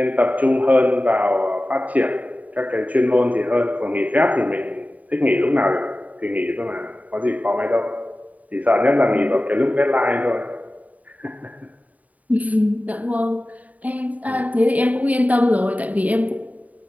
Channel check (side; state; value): left; late; 0.072 ms